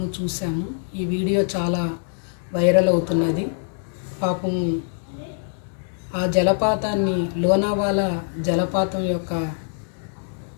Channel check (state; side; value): silent; right; 63 dB below the other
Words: చూసాము. ఈ వీడియో చాలా వైరల్ అవుతున్నది. పాపం ఆ జలపాతాన్ని, లోనావాలా జలపాతం యొక్క